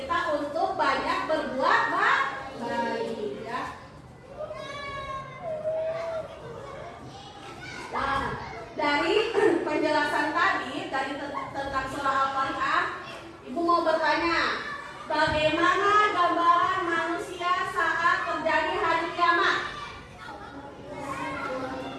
untuk banyak berbuat baik, ya. Nah, dari penjelasan tadi tentang surah Al-Qari'ah, Ibu mau bertanya, bagaimana gambaran manusia saat terjadi hari kiamat?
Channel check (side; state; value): both; identical; correlation 1.00